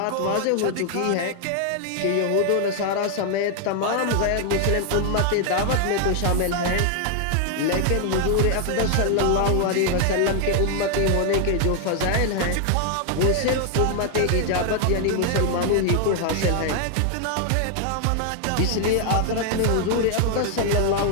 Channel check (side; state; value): both; different; correlation 0.00